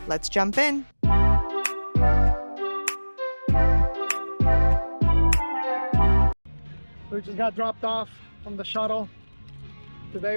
Let's jump in! We just got dropped off from the shuttle.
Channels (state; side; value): inverted; both; correlation -1.00